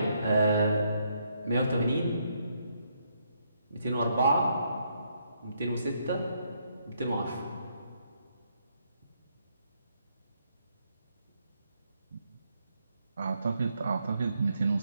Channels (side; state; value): both; inverted; correlation -0.74